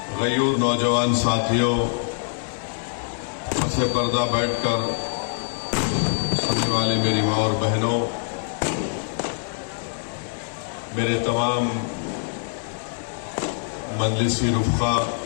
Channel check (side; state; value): right; silent; 62 dB below the other